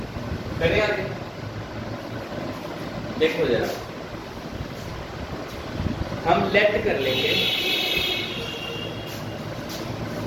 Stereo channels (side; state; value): both; identical; correlation 1.00